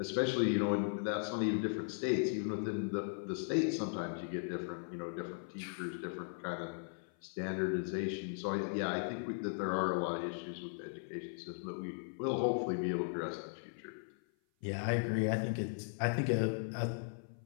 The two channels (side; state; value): right; silent; 53 dB below the other